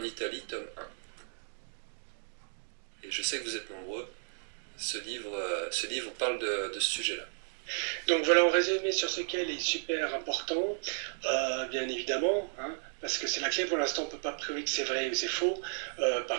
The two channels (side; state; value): left; silent; 55 dB below the other